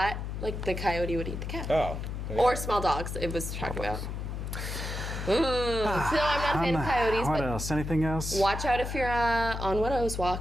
like the coyote would eat the cat. Oh. Or small dogs, it was talking about. So I'm not a fan of coyotes, What but else? Anything else? watch out if you're on Widow's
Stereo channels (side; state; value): left; noise; hum, 5 dB below the sound